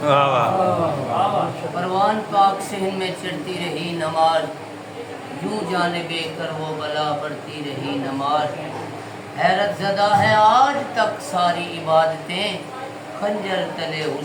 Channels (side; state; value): both; identical; correlation 1.00